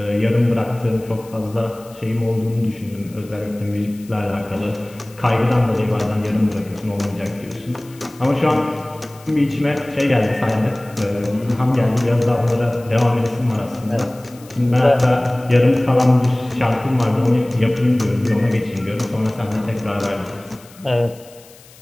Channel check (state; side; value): noise; left; hiss, 24 dB below the sound